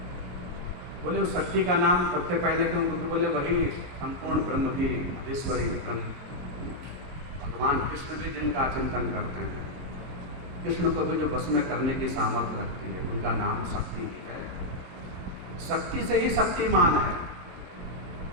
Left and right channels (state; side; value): late; left; 22 ms